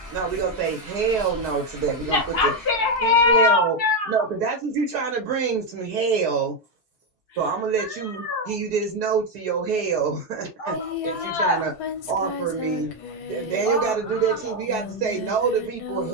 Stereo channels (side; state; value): both; normal; correlation 0.06